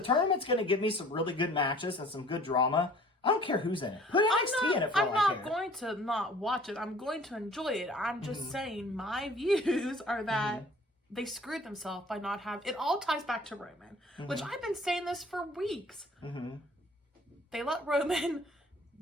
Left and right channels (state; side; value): normal; both; correlation 0.51